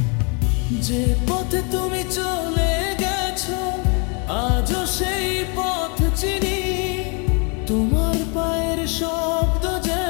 যে পথে তুমি চলে গেছো আজও সেই পথ চিনি, তোমার পায়ের শব্দ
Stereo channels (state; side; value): quieter; right; 35.1 dB